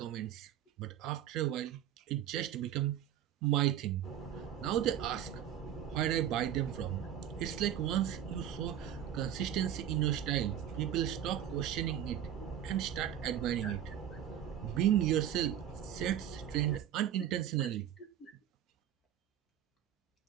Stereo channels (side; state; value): left; quieter; 10.4 dB